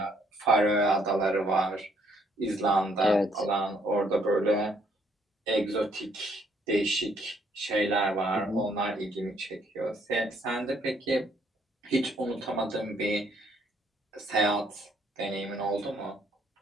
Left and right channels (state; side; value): normal; both; correlation 0.68